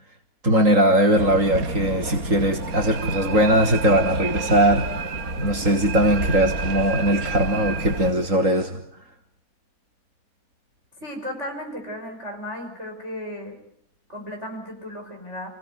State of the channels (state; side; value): late; left; 3.8 ms